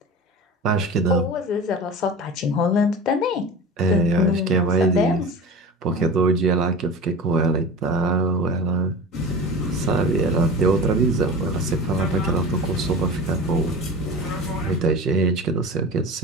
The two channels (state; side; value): normal; both; correlation 0.33